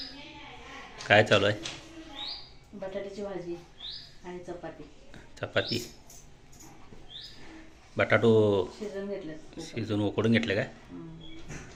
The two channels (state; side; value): identical; both; correlation 1.00